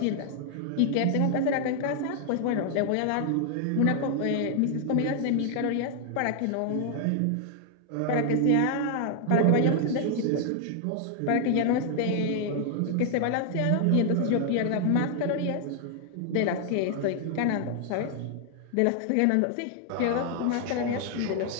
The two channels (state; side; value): different; both; correlation 0.00